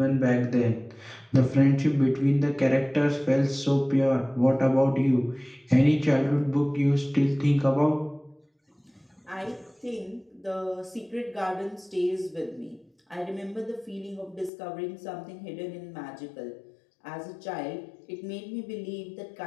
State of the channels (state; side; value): drops out; right; at 14.5 s